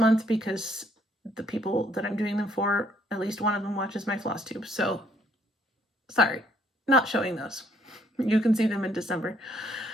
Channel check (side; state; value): both; normal; correlation 0.66